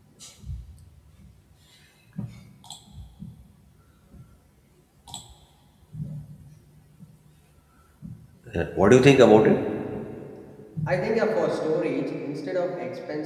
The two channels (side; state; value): both; identical; correlation 1.00